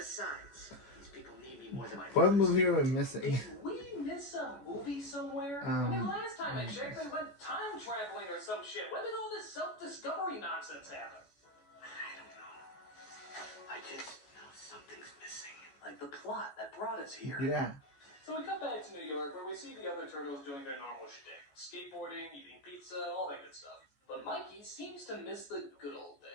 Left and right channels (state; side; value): late; right; 14 ms